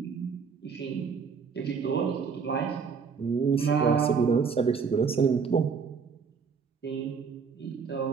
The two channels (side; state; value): left; quieter; 5.7 dB